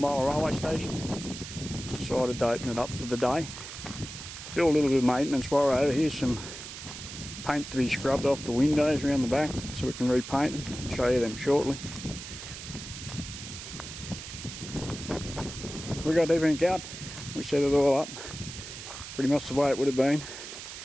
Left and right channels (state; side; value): noise; right; hiss, 11 dB below the sound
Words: railway station. Decided to open it up for the day. Do a little bit of maintenance while we're over here. Some paint to be scrubbed off the windows around the back so we can repaint them. I'll show you them shortly. We got everything out. We set it all up. Pretty much the way it would have been